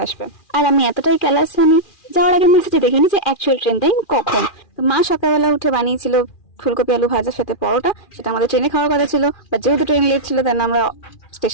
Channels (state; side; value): late; right; 2.4 ms